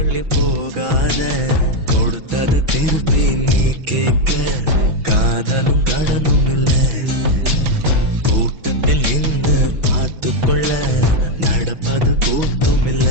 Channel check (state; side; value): late; left; 6.1 ms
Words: போகாத கொடுத்தத திருப்பி நீ கேட்க காதலும் கடனும் இல்ல கூட்டத்தில் நின்று பார்த்து கொள்ள நடப்பது கூத்தும் இல்ல